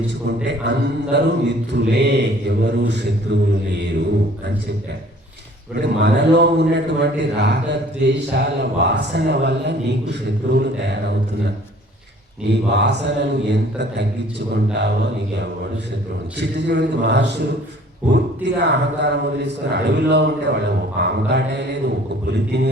అందరూ మిత్రులే, ఎవరు శత్రువులు లేరు అని చెప్పారు. ఇప్పుడు మనలో ఉన్నటువంటి రాగద్వేషాల వాసన వల్ల నీకు శత్రువులు తయారవుతున్నారు. నీ వాసనలు ఎంత తగ్గించుకుంటావో నీకు ఎవడు శత్రువులు. చిట్టిచివరికి మహర్షులు పూర్తిగా అహంకారం వదిలేసుకొని అడవిలో ఉంటే వాళ్ళు ఒక పాము కాటేయలేదు, ఒక పులి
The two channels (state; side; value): normal; both; correlation 0.53